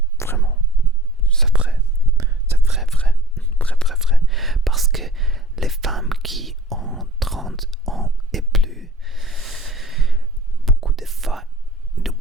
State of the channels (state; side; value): normal; both; correlation 0.47